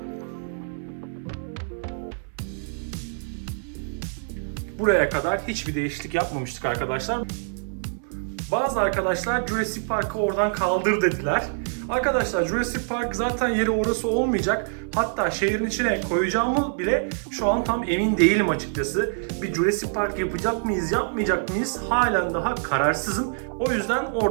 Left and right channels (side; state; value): left; silent; 59 dB below the other